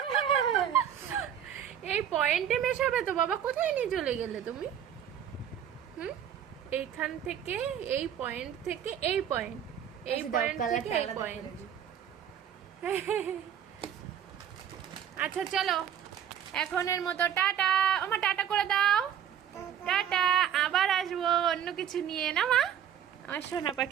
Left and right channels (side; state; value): left; quieter; 9.4 dB